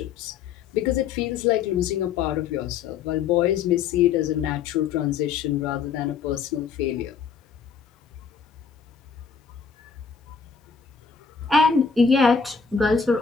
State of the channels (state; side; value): quieter; right; 6.2 dB